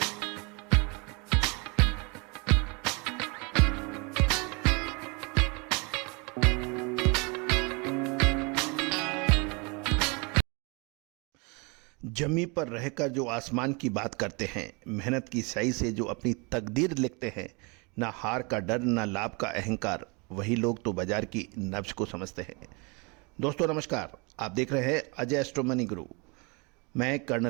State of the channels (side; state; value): left; quieter; 30.4 dB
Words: जमी पर रहकर जो आसमान की बात करते हैं, मेहनत की स्याही से जो अपनी तकदीर लिखते हैं, ना हार का डर ना लाभ का अहंकार, वही लोग तो बाजार की नब्ज को समझते हैं। दोस्तों नमस्कार, आप देख रहे हैं अजय एस्ट्रो मनी गुरु। मैं